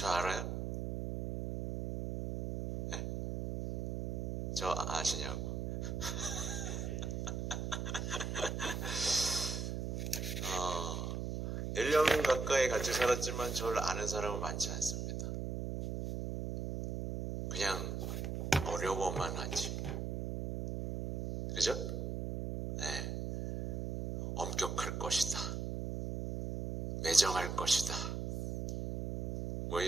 알아요? 네. 저 아시냐고. 1년 가까이 같이 살았지만 저를 아는 사람은 많지 않습니다. 그냥 어려워만 하지. 그죠? 네. 엄격할 것이다. 매정할 것이다. 뭐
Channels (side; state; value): right; noise; hum, 3 dB below the sound